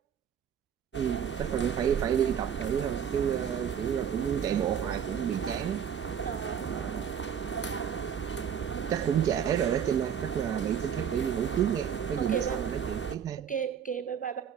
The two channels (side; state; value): left; quieter; 8.1 dB